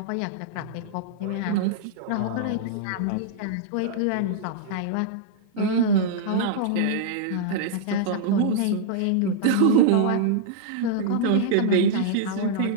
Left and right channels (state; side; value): different; both; correlation -0.02